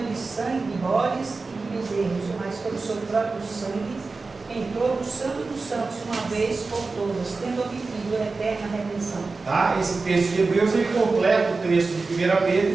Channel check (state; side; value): quieter; left; 3.9 dB